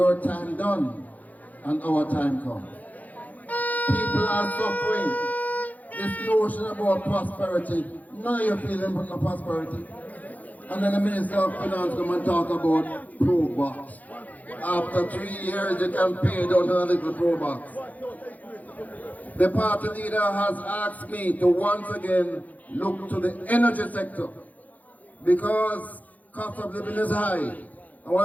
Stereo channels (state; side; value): late; right; 0.078 ms